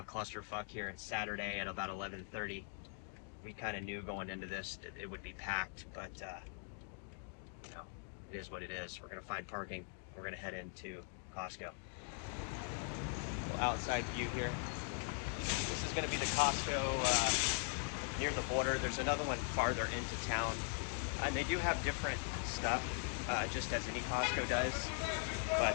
clusterfuck here. It's Saturday at about 11:30. We kind of knew going into this that it would be packed, but it is what it is. We're gonna find parking. We're gonna head into Costco. Outside view here. This is gonna be the Costco near the border. There's another one farther into town, and they do have different stuff, just as any Costco does,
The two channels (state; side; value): silent; right; 50 dB below the other